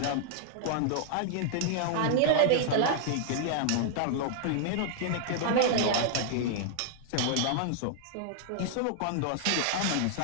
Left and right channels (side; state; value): both; different; correlation -0.01